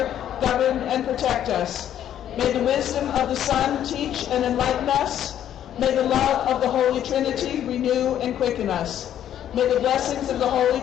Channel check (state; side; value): quieter; right; 10.7 dB